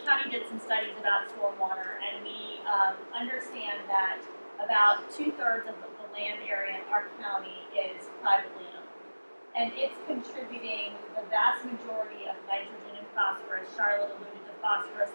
county did some studies about stormwater, and we understand that about 2/3 of the land area in our county is privately owned. And it's contributing the vast majority of nitrogen and phosphorus. Charlotte alluded to phosphorus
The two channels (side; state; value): both; inverted; correlation -1.00